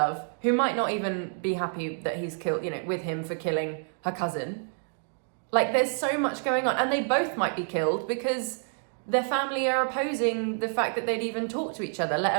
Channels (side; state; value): left; silent; 59 dB below the other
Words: who might not even be happy that he's killed, with him for killing her cousin. Like, there's so much going on, and they both might be killed because their family are opposing the fact that they'd even talk to each other,